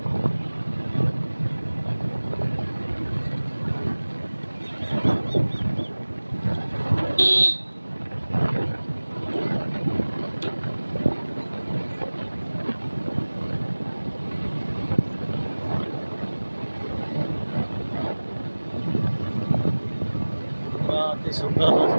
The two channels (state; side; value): inverted; both; correlation -1.00